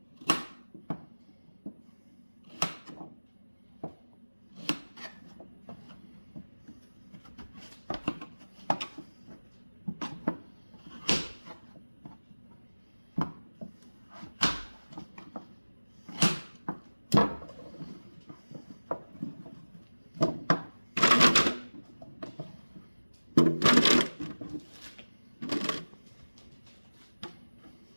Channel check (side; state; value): both; inverted; correlation -1.00